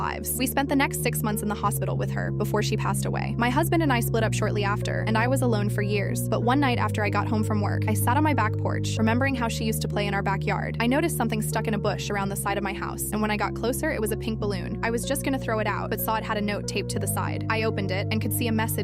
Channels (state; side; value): identical; both; correlation 1.00